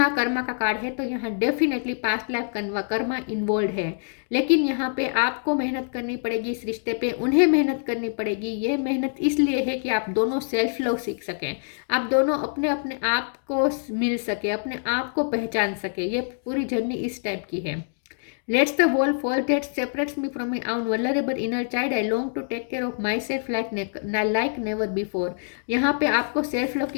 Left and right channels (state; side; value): silent; right; digital silence